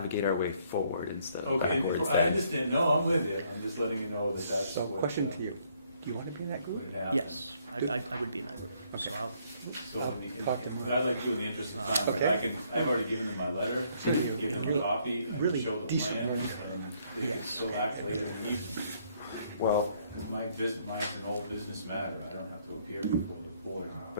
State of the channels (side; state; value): both; inverted; correlation -0.67